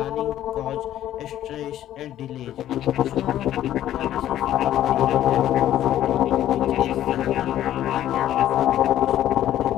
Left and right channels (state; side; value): quieter; right; 12.3 dB